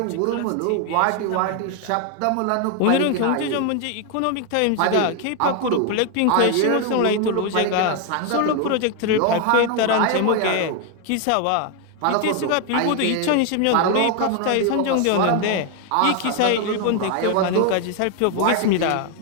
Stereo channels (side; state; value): both; different; correlation 0.01